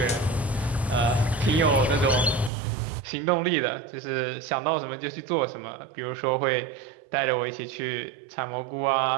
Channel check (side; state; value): left; drops out; at 2.5 s